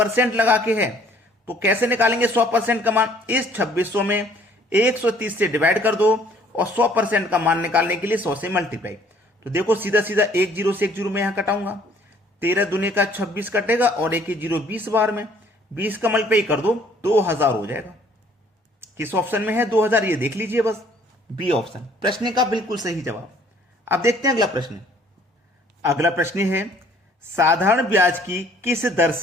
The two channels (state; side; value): normal; both; correlation 0.59